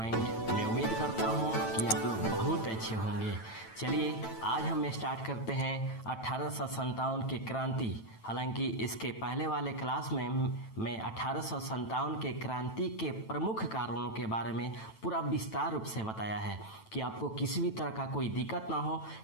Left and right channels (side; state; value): right; late; 9.1 ms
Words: मैं उम्मीद करता हूँ कि आप लोग बहुत अच्छे होंगे। चलिए आज हम स्टार्ट करते हैं 1857 की क्रांति। हालांकि इसके पहले वाले क्लास में मैं 1857 के क्रांति के प्रमुख कारणों के बारे में पूरा विस्तार रूप से बताया है कि आपको किसी भी तरह का कोई दिक्कत ना हो